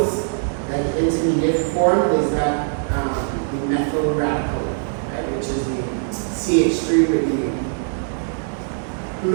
that the intermediate form is that the methyl radical, right? Which is the CH3 with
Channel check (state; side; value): silent; left; 65 dB below the other